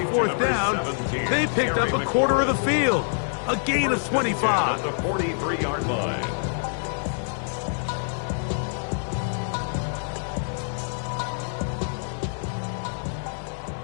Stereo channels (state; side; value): silent; right; digital silence